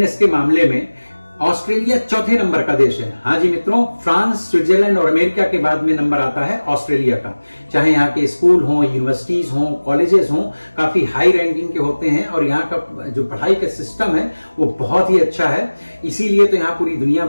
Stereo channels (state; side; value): inverted; both; correlation -1.00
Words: के मामले में ऑस्ट्रेलिया चौथे नंबर का देश है। हाँ जी मित्रों, फ्रांस, स्विट्जरलैंड और अमेरिका के बाद में नंबर आता है ऑस्ट्रेलिया का। चाहे यहाँ के स्कूल हों, यूनिवर्सिटीज हों, कॉलेजेस हों, काफी हाई रैंकिंग के होते हैं और यहाँ का जो पढ़ाई का सिस्टम है वो बहुत ही अच्छा है। इसीलिए तो यहाँ पूरी दुनिया